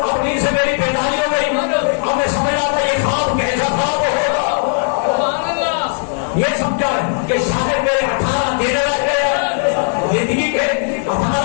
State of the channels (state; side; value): silent; right; 68 dB below the other